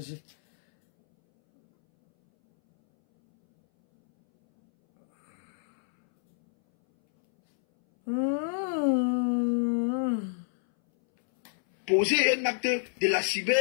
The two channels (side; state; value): right; silent; 60 dB below the other